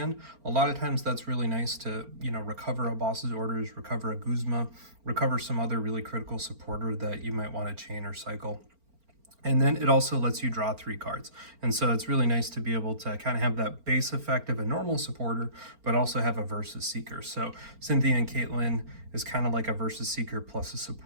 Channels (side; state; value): left; late; 4.4 ms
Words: A lot of times that's really nice to, recover a boss's orders, recover a Guzma, recover some other really critical supporter that you might want to chain or cycle. And then it also lets you draw 3 cards. And so it's really nice to be able to kind of have that base effect of a normal supporter, but also have a versus seeker. So Cynthia and Caitlin is kind of like a versus seeker plus a